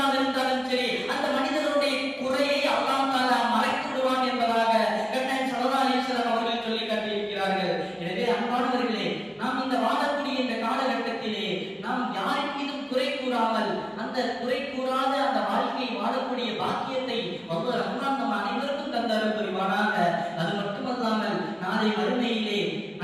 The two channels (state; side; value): identical; both; correlation 1.00